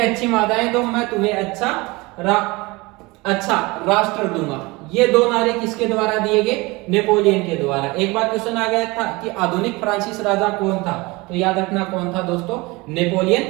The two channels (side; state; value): left; quieter; 23.7 dB